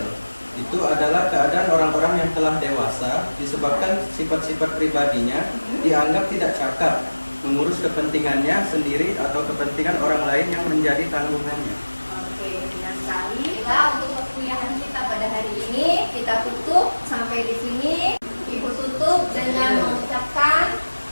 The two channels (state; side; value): inverted; both; correlation -1.00